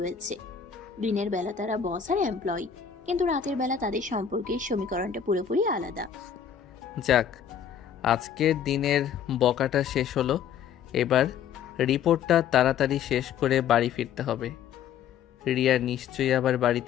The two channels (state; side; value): quieter; right; 8.2 dB